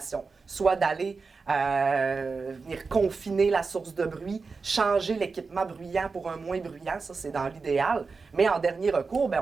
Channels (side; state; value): left; quieter; 4.5 dB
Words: soit d'aller venir confiner la source de bruit, changer l'équipement bruyant pour un moins bruyant, ça c'est dans l'idéal, mais en dernier recours, bien,